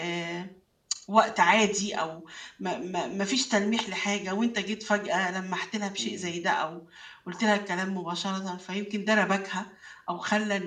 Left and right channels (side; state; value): both; identical; correlation 1.00